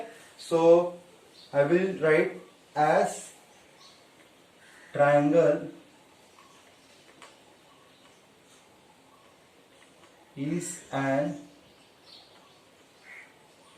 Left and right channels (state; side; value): identical; both; correlation 1.00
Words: so I will write as triangle is an